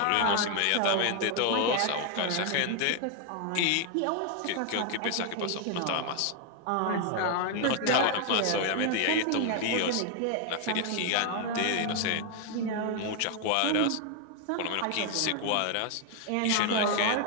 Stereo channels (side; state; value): both; different; correlation 0.00